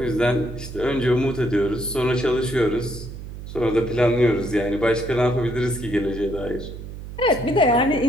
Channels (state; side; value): noise; right; hum, 11 dB below the sound